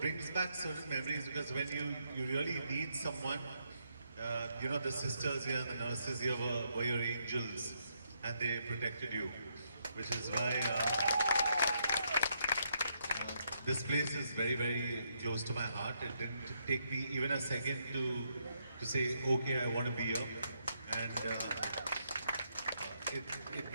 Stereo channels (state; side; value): inverted; both; correlation -0.77